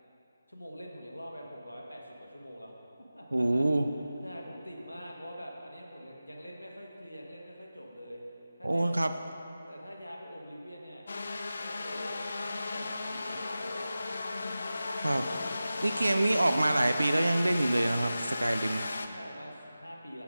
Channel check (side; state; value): both; inverted; correlation -0.95